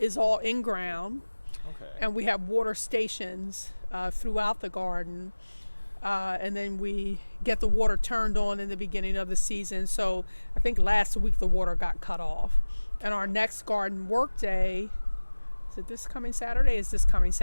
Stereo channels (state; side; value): inverted; both; correlation -1.00